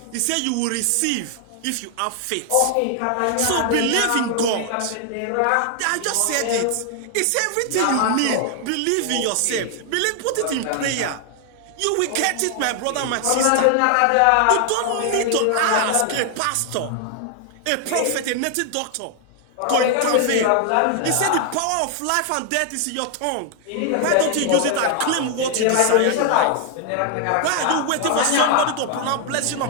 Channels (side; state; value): both; different; correlation 0.00